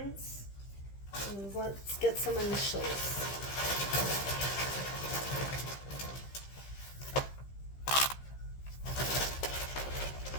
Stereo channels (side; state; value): right; late; 15 ms